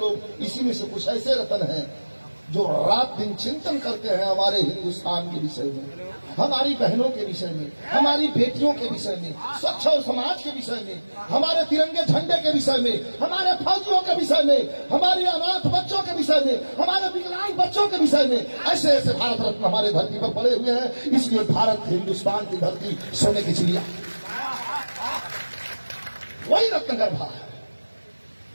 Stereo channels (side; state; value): both; inverted; correlation -1.00